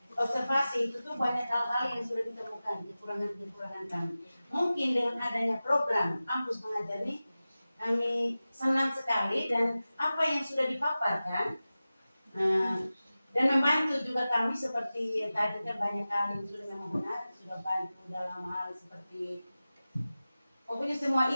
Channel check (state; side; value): inverted; both; correlation -0.96